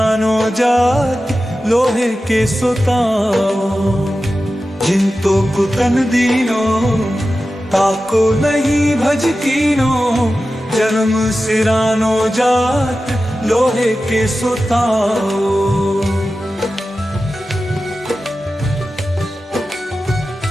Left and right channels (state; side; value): normal; both; correlation 0.94